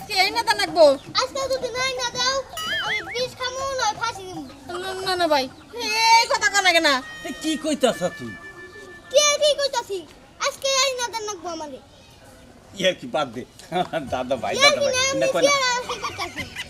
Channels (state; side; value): identical; both; correlation 1.00